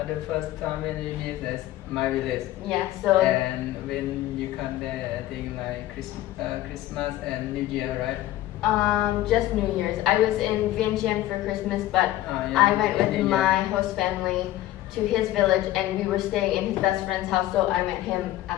The first time when you meet is my village. Yeah, so And when you come there, I think like Christmas and New Year, right? just New Year's. I was in Vientiane for Christmas, but Yeah, I went with New Year. my host family to his village, and we were staying in his best friend's house, so I met him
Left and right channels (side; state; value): right; quieter; 14.9 dB